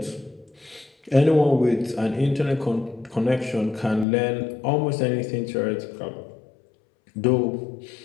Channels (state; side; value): drops out; right; at 4.0 s